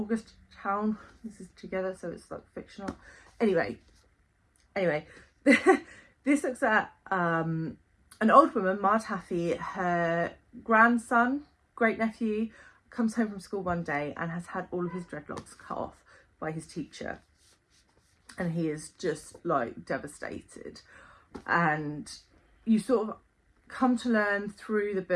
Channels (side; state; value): both; identical; correlation 1.00